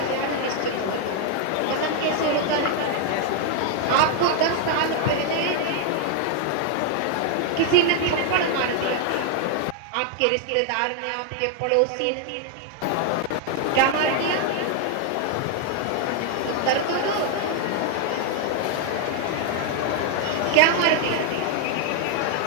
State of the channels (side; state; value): both; different; correlation 0.00